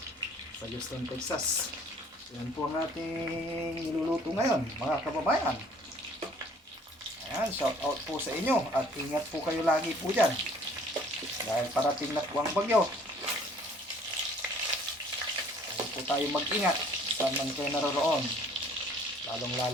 sa Houston, Texas. Yan po ang ating niluluto ngayon mga kababayan. Ayan, shout out po sa inyo at ingat po kayo lagi po dyan dahil parating na po ang bagyo. Ayaw po tayo mag-ingat saan man kayo naroroon, lalong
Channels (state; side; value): normal; both; correlation 0.56